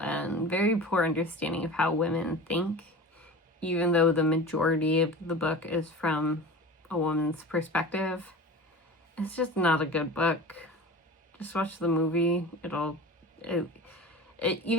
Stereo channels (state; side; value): normal; both; correlation 0.34